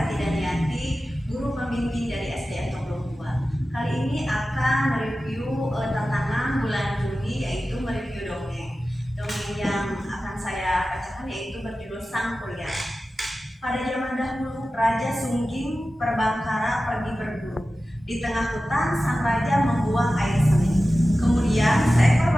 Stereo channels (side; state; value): both; normal; correlation 0.95